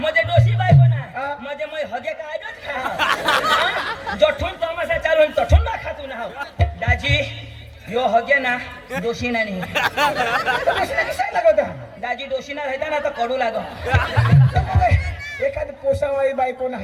डोशी बायको हा. ना म्हणजे मग हगे काय खा जठून तमाशा चालू तठून ना खातू ना दाजी यो हगे ना दोषी ना नाही लागत दाजी दोषी ना राहता ना तर कडू लाग एखादी पोसावाळी बाई कोण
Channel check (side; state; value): both; identical; correlation 1.00